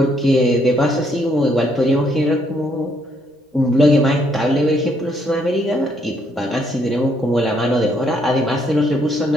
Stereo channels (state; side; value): normal; both; correlation 0.71